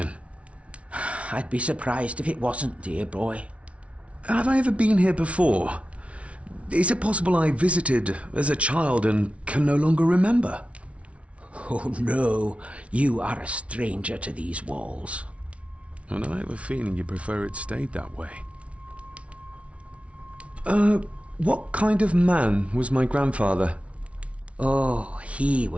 I'd be surprised if it wasn't, dear boy. Have I ever been here before? Is it possible I visited as a child and can no longer remember? Oh no, you are a stranger to these walls. And I have a feeling you prefer it stayed that way. What kind of man was my grandfather? Oh, he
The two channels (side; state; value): left; late; 0.063 ms